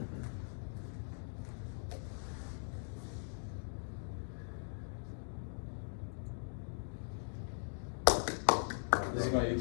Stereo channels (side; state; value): right; silent; digital silence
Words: This is my